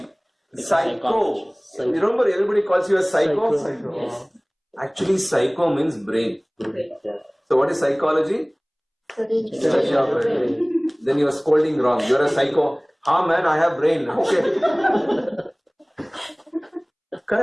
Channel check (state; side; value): identical; both; correlation 1.00